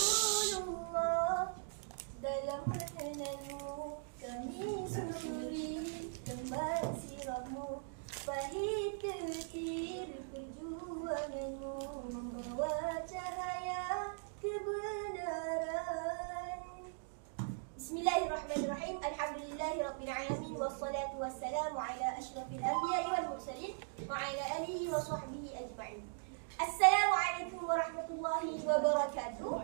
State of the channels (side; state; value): left; silent; digital silence